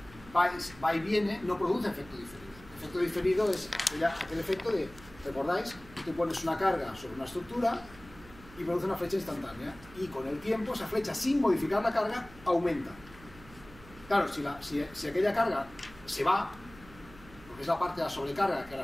va y viene, no produce efecto diferido. El efecto diferido es aquel efecto de, ¿recordáis? Tú pones una carga sobre una estructura y produce una flecha instantánea. Y con el tiempo esa flecha, sin modificar la carga, aumenta. Claro, si aquella carga se va, es la parte de la sobrecarga que ahora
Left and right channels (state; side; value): noise; right; hum, 21 dB below the sound